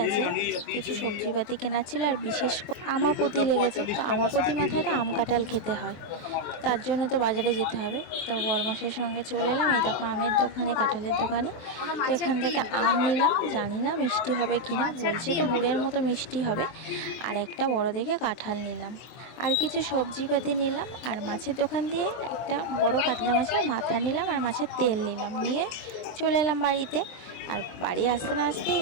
আছে, কিছু সবজিপাতি কেনার ছিল, আর বিশেষ করে আমাপতি লেগেছে। তো আমাপতি মাথায় তো আম কাঁঠাল খেতে হয়, তো তার জন্য তো বাজারে যেতে হবে। তো বরমাসের সঙ্গে চলে এলাম। এই দেখো আমের দোকানে, কাঁঠালের দোকানে। তো এখান থেকে আম নিলাম, জানি না মিষ্টি হবে কিনা, বলছে তো গুড়ের মতো মিষ্টি হবে। আর একটা বড় দেখে কাঁঠাল নিলাম, আর কিছু সবজিপাতি নিলাম। আর মাছের দোকান দিয়ে একটা বড় কাতলা মাছের মাথা নিলাম, আর মাছের তেল নিলাম, নিয়ে চলে এলাম বাড়িতে। আর বাড়ি আসতে না আসতেই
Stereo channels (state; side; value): late; right; 23 ms